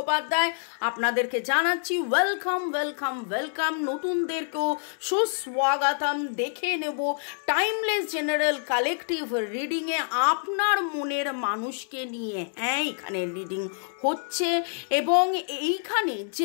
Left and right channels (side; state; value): right; silent; 60 dB below the other